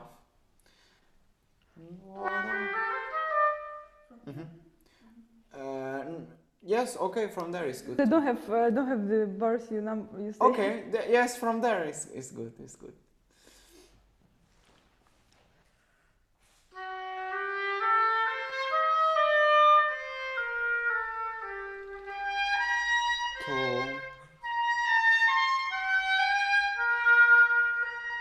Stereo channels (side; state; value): both; identical; correlation 1.00